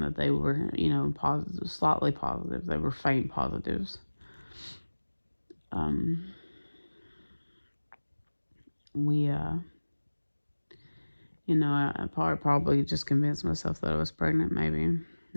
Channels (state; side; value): inverted; both; correlation -1.00